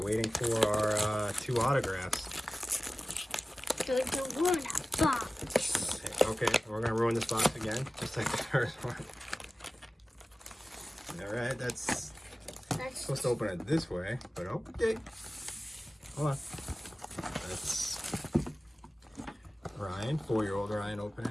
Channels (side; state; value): both; normal; correlation 0.97